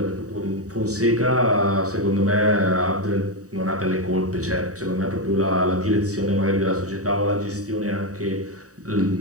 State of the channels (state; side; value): late; left; 0.66 ms